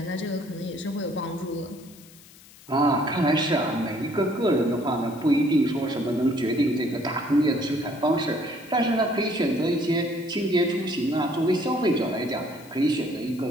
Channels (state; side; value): noise; left; hiss, 23 dB below the sound